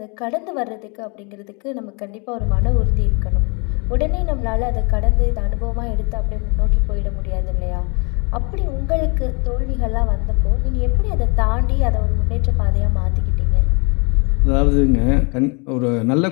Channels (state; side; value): quieter; right; 32.9 dB